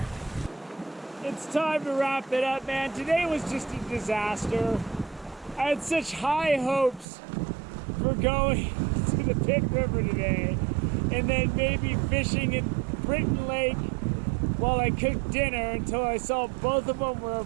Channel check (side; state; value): left; drops out; at 7.1 s